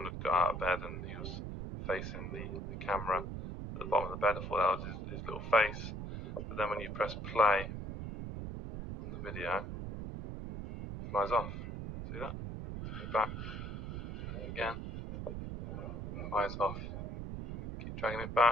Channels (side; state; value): right; noise; rumble, 6 dB below the sound